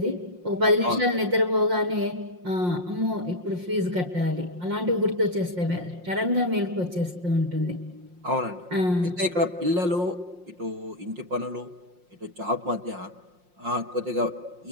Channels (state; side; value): late; left; 5.6 ms